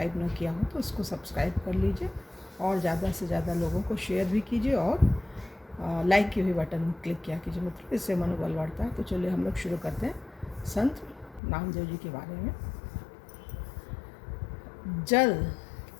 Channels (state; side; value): drops out; right; at 11.4 s